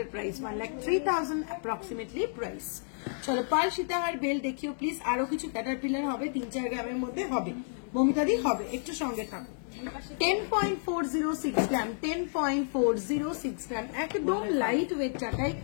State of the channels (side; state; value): right; silent; digital silence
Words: প্রাইস, 1,03,000 অ্যাপ্রক্সিমেটলি প্রাইস। চলো পার্ল সীতাহার বেল দেখিও প্লিজ। আরো কিছু ক্যাটারপিলার হবে, 3-4 গ্রামের মধ্যে হবে, মমিতাদি হবে, একটু সঙ্গে থাকো। 10.406 গ্রাম, 10.406 গ্রাম, একদম লাইট ওয়েট চাটাই,